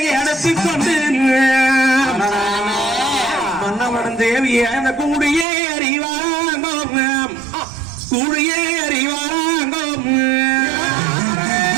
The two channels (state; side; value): drops out; left; at 5.5 s